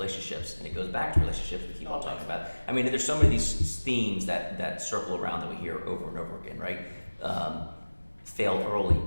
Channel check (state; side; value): inverted; both; correlation -1.00